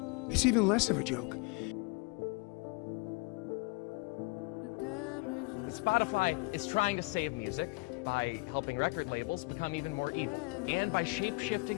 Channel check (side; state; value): right; quieter; 26.8 dB